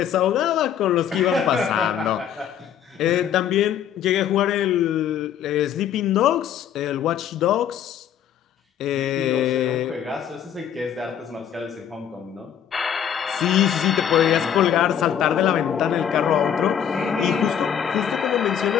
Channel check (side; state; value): right; quieter; 9.2 dB